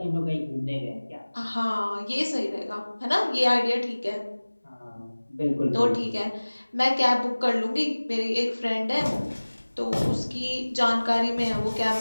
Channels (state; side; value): inverted; both; correlation -1.00